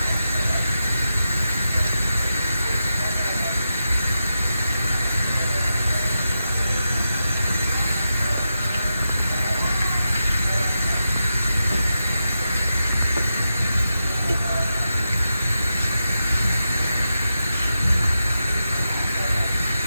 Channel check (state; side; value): inverted; both; correlation -0.88